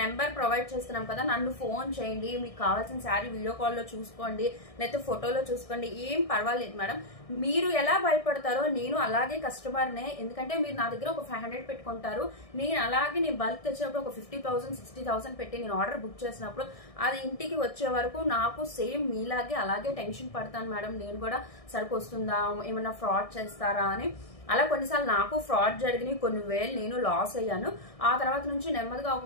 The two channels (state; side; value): late; right; 1.6 ms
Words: నెంబర్ ప్రొవైడ్ చేస్తున్నాం కదా, నన్ను ఫోన్ చేయండి, మీకు కావాల్సిన శారీ వీడియో కాల్లో చూసుకోండి, లేకపోతే ఫోటోలో చూసుకోండి, ఏం పర్వాలేదు మేడం. మీరు ఎలా భయపడతారో నేను అలాగే కస్టమర్నే, ఎందుకంటే మీరు నా దగ్గర ఒక 500 పెట్టుకుంటారు, నేను అలాగే నేను బల్క్ తెచ్చినప్పుడు ఒక 50,000 60,000 పెట్టి నేను ఆర్డర్ బుక్ చేసినప్పుడు అది ఇంటికి వచ్చే వరకు నాకు సేమ్ మీలాగే అలాగే టెన్షన్ పడతాను మేడం. నేను కూడా సరుకు వస్తుందా, ఏమన్నా ఫ్రాడ్ చేస్తారా అని. అలా కొన్నిసార్లు నాకు ఫ్రాడ్ జరిగినాయి, కొన్ని వేలు నేను లాస్ అయ్యాను. ఆ తర్వాత నుంచి నెమ్మదిగా